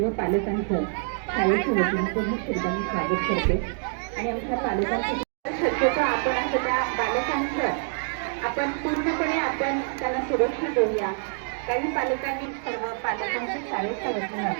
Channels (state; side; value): silent; left; 61 dB below the other